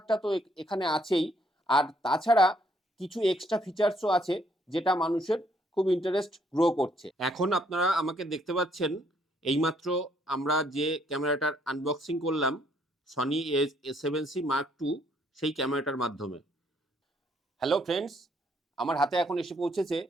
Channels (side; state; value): both; normal; correlation 0.69